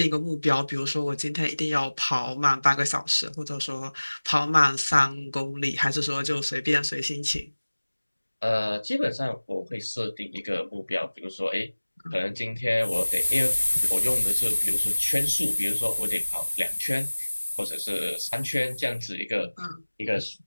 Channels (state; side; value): inverted; both; correlation -1.00